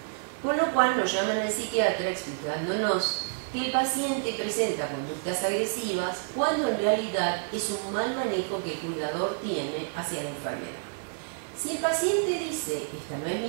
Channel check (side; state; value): left; silent; digital silence